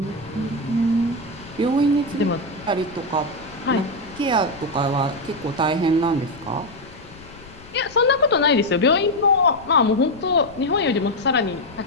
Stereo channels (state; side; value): noise; left; rumble, 20 dB below the sound